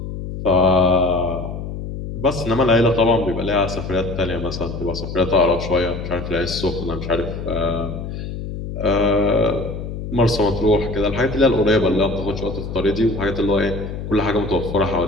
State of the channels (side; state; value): left; noise; hum, 7 dB below the sound